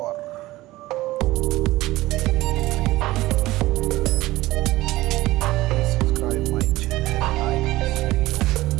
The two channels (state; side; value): quieter; left; 17.9 dB